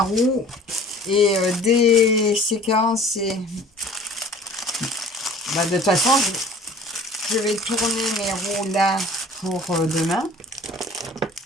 roue. Et des séquences, et bah, de toute façon, je vais tourner mes roues là pour demain.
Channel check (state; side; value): normal; both; correlation 0.48